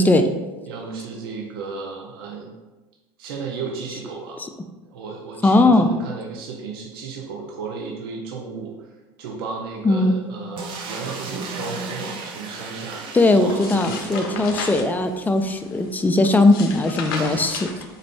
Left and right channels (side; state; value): both; normal; correlation 0.67